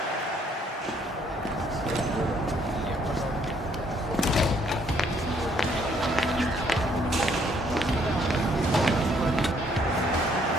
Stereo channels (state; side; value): normal; both; correlation 0.67